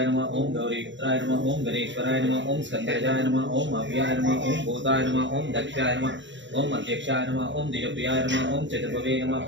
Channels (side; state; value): left; late; 0.54 ms